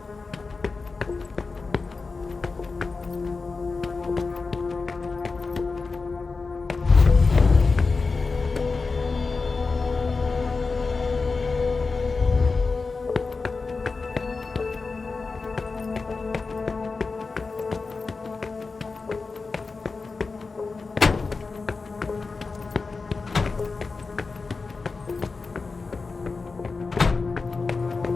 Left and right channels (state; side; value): quieter; right; 4.2 dB